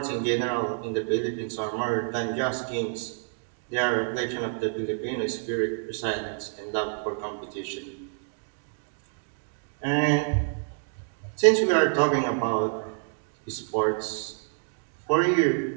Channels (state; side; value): silent; left; digital silence